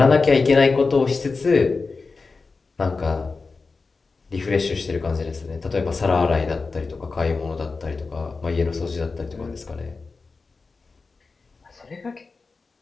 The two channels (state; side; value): quieter; right; 4.2 dB